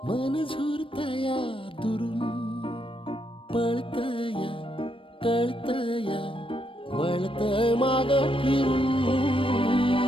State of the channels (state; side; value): late; right; 0.25 ms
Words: मन झुरतया दुरून पळतया कळतया वळतय माग